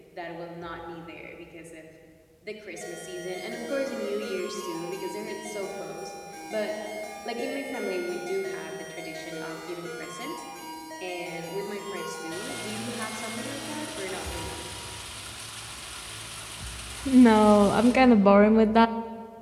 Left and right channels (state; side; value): identical; both; correlation 1.00